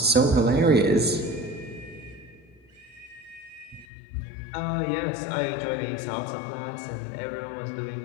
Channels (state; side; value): drops out; right; at 3.9 s